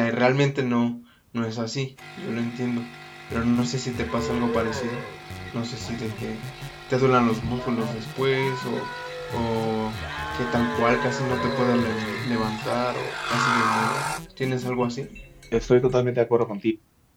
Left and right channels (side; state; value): both; identical; correlation 1.00